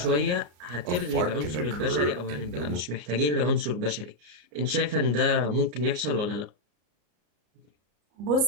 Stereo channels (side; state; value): left; late; 34 ms